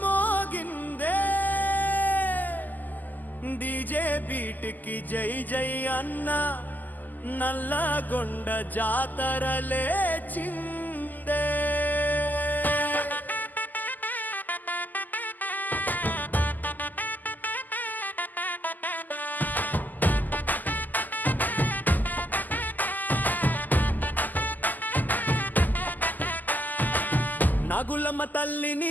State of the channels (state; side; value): late; right; 0.084 ms